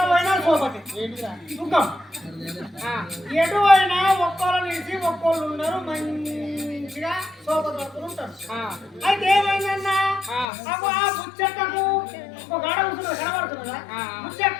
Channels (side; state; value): right; drops out; at 10.5 s